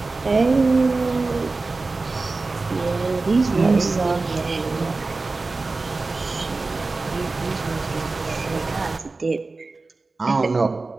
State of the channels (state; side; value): quieter; left; 3.6 dB